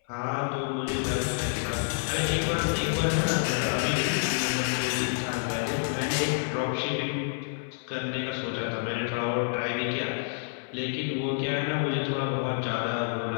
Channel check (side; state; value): right; silent; 59 dB below the other